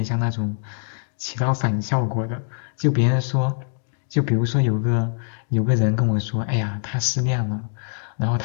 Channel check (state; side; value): silent; right; digital silence